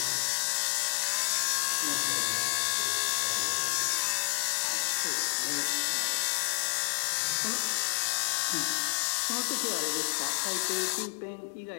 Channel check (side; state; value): right; silent; 58 dB below the other